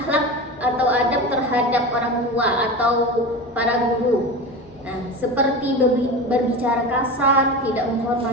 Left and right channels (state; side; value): normal; both; correlation 0.27